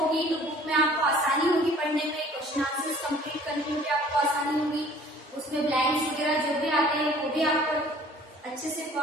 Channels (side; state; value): both; normal; correlation 0.52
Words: तो बुक में आपको आसानी होगी पढ़ने में, क्वेश्चन आंसर्स कंप्लीट करने में भी आपको आसानी होगी। उसमें ब्लैंक्स वगैरह जो भी आते हैं वो भी आपको अच्छे से